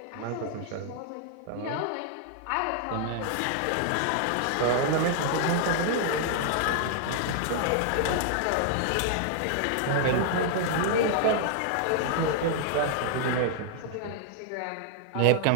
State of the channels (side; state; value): both; different; correlation 0.00